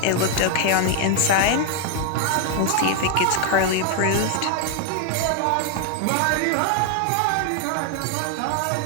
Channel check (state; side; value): different; both; correlation 0.00